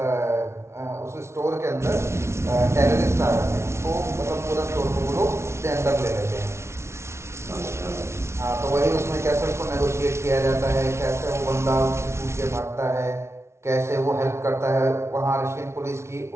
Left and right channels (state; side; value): late; left; 0.13 ms